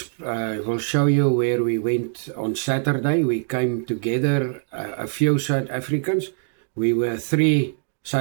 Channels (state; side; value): silent; left; digital silence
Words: will show you where we went on Saturday. We came together, a few South Africans. We were 3